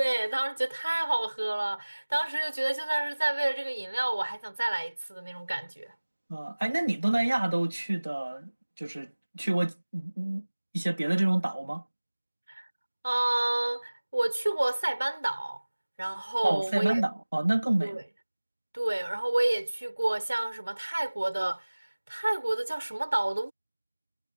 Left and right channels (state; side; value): inverted; both; correlation -1.00